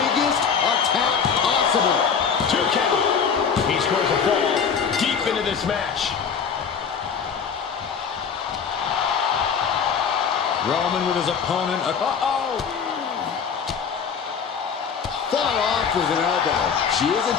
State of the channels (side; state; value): right; quieter; 6.6 dB